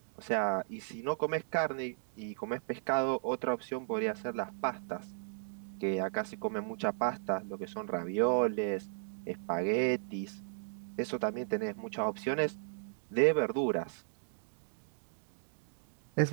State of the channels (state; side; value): silent; left; digital silence